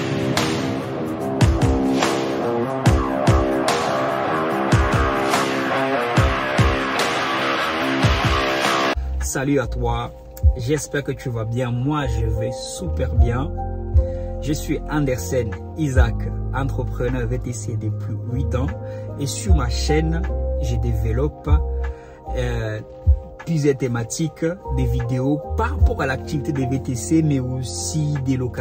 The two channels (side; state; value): both; identical; correlation 1.00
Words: Salut à toi, j'espère que tu vas bien. Moi, je vais super bien. Je suis Andersen Isaac, entrepreneur VTC depuis 8 ans. Et sur ma chaîne, je développe plusieurs thématiques, des vidéos par rapport à l'activité des VTC, mais aussi des